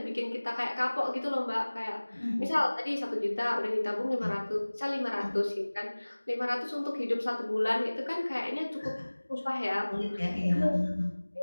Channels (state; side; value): inverted; both; correlation -1.00